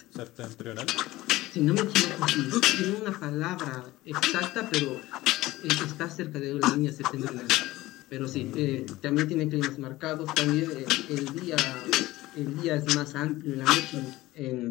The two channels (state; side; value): quieter; right; 17.9 dB